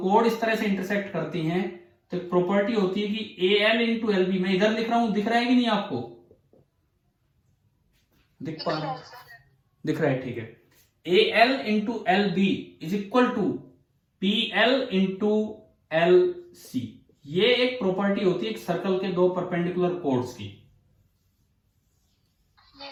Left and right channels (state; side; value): identical; both; correlation 1.00